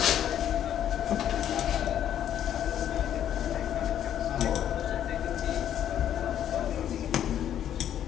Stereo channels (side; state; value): right; quieter; 10.4 dB